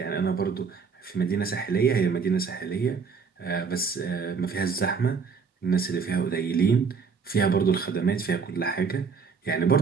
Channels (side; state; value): left; quieter; 5.5 dB